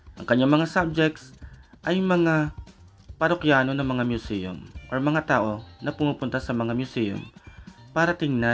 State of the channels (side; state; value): both; identical; correlation 1.00